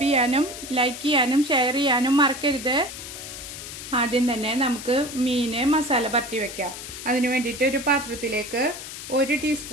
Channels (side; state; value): left; noise; hiss, 10 dB below the sound